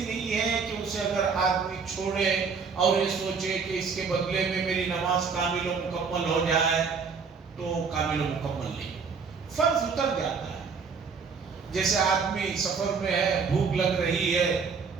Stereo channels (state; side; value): quieter; left; 5.4 dB